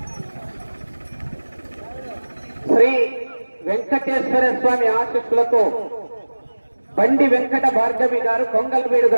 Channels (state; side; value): inverted; both; correlation -1.00